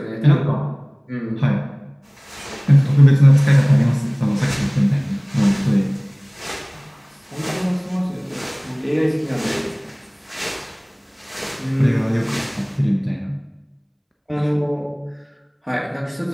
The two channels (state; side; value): identical; both; correlation 1.00